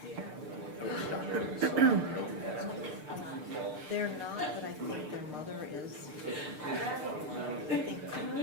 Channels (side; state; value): left; late; 6.7 ms